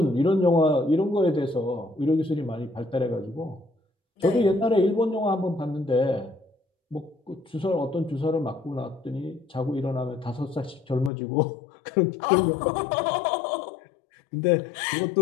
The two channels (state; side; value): drops out; right; at 11.1 s